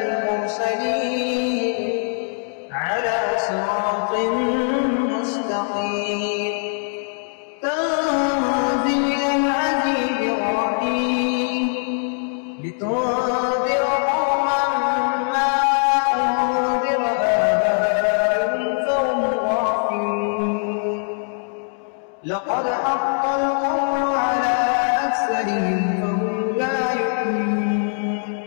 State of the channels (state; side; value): silent; right; 63 dB below the other